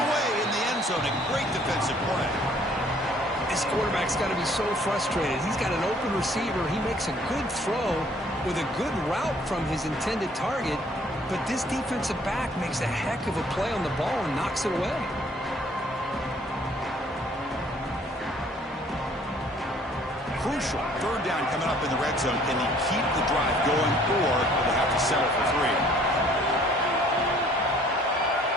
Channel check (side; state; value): both; normal; correlation 0.58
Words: in the end zone. A great defensive play. This quarterback's got to be so frustrated. He's got an open receiver. He makes a good throw with a good route from his intended target. But this defensive back makes a heck of a play on the ball and knocks it away. Crucial 3rd down coming up in the red zone. Can he keep the drive going, or will they have to settle for 3?